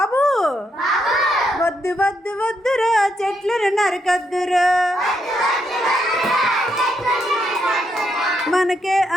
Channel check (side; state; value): both; normal; correlation 0.78